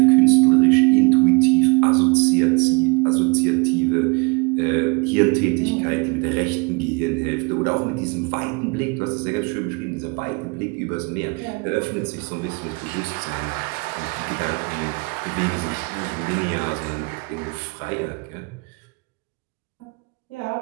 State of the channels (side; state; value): left; quieter; 29.4 dB